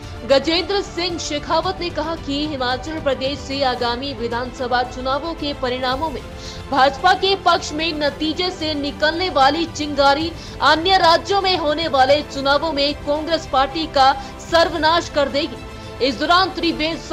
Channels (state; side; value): identical; both; correlation 1.00